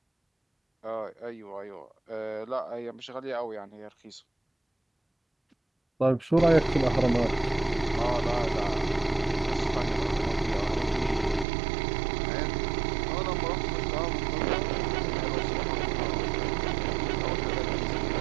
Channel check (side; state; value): left; drops out; at 11.5 s